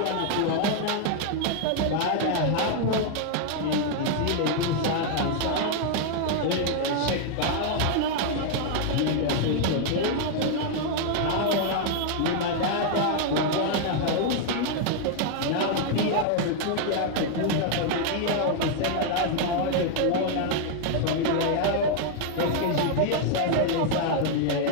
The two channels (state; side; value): different; both; correlation 0.00